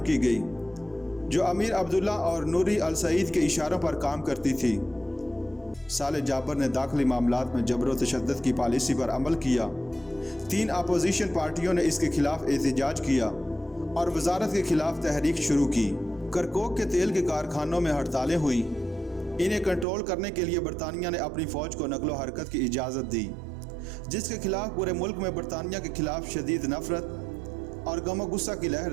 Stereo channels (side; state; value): left; drops out; at 19.9 s